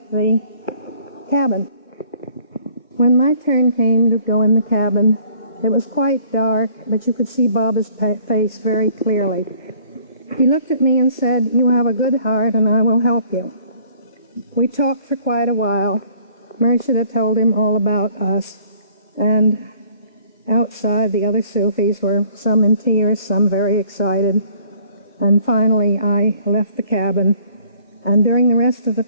the cabin. When my turn came to go in the cabin, it was quite dark, but you could see Baba's face very clearly. He looked at me and said, "You have a good heart and I will help you." We talked for quite a while. Murshida told him all about us, and outside the other Sufis were some in tears, some very excited. And finally I left the cabin, and during the rest of the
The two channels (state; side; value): inverted; both; correlation -0.58